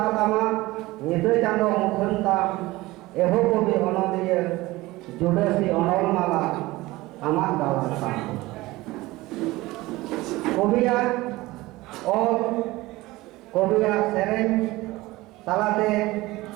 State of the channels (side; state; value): left; quieter; 19.5 dB